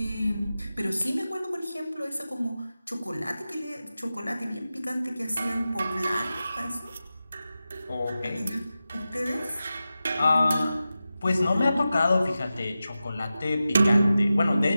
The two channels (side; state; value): both; inverted; correlation -0.93